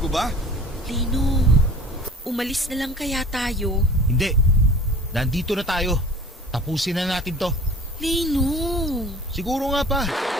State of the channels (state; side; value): normal; both; correlation 0.43